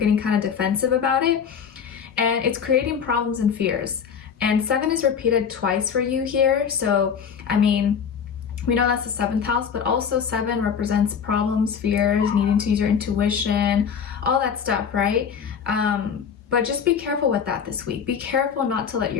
kind of defensive about it, and it's creating problems and fears. And 7 is repeated twice for you here, so I mean, we know that's the 7th house, but also 7 represents problems, fears, needing to use your intuition, all that stuff, right? But just be careful with that this week. Be careful not to let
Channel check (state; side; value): quieter; right; 7.1 dB